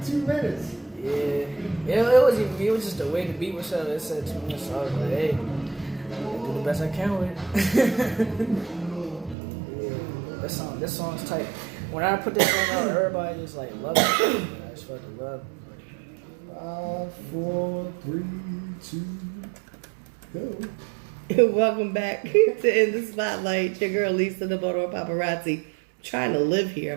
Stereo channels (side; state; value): left; drops out; at 9.3 s